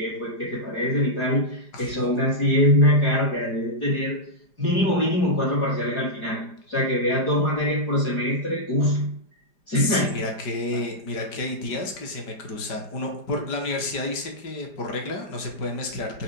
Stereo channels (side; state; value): right; late; 5.0 ms